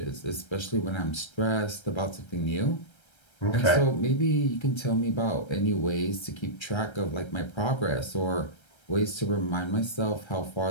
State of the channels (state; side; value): late; right; 1.3 ms